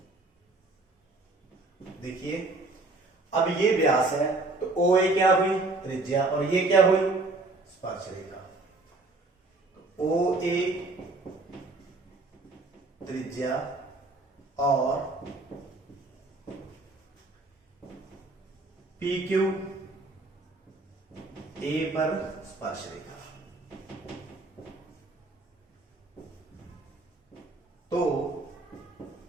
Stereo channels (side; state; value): left; quieter; 3.2 dB